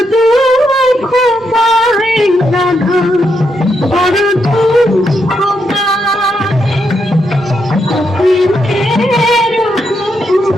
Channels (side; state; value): both; normal; correlation 0.80